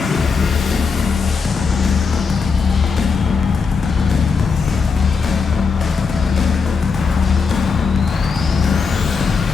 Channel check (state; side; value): quieter; right; 5.1 dB